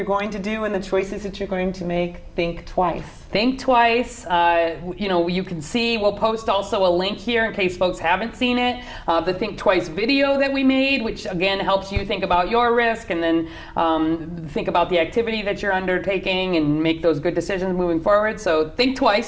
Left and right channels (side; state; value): both; identical; correlation 1.00